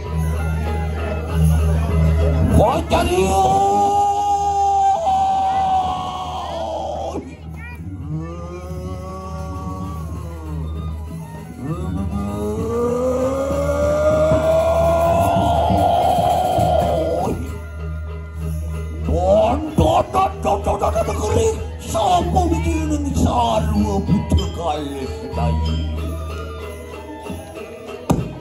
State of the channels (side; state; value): both; identical; correlation 1.00